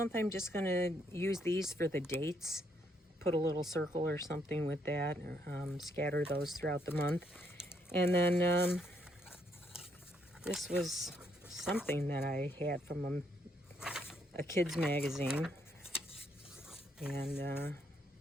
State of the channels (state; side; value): normal; both; correlation 0.73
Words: I'm just going to use these for the dates. Put a little circle or something with that, or scatter those throughout the month. And then this was something that I had from a kid's magazine. And